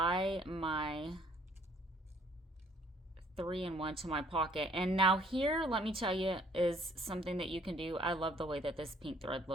my 3-in-1 to my pocket. And now here, let me tell you, is something that you can do. I love the way that this pink thread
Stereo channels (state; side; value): normal; both; correlation 0.61